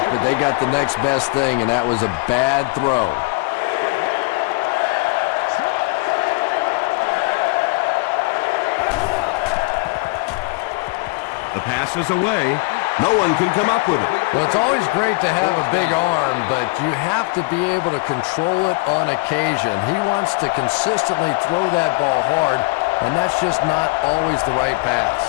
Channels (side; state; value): right; quieter; 26.3 dB